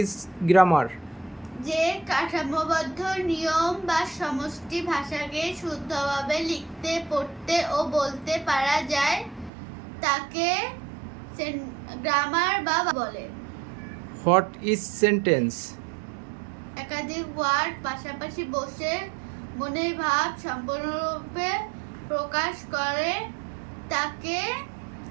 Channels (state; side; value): drops out; left; at 9.5 s